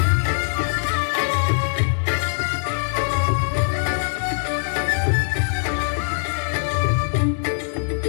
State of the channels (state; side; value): silent; right; digital silence